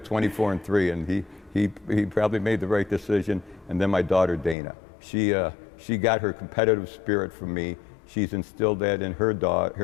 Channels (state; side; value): drops out; right; at 4.5 s